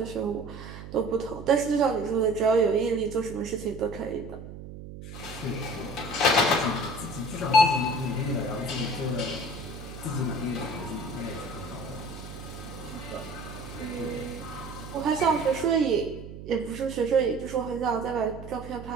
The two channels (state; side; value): noise; right; hum, 12 dB below the sound